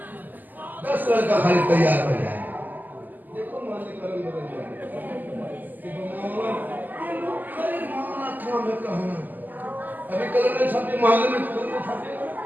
10 लड़का खाली तैयार हो जाए। देखो मोहल्ले का रंग बदल जाए। अभी कलर ने छापे मोहल्ले में कलर ने छापे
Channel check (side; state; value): left; late; 0.085 ms